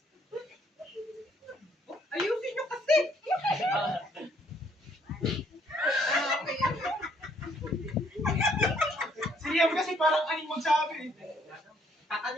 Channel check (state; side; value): normal; both; correlation 0.67